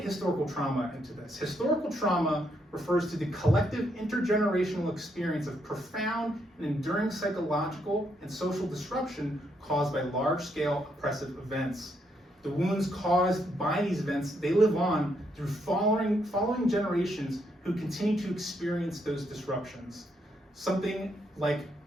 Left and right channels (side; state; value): both; normal; correlation 0.76